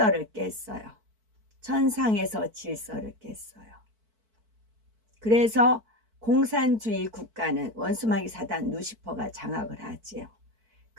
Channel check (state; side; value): late; left; 4.5 ms